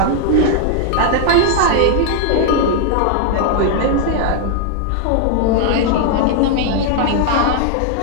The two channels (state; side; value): different; both; correlation 0.00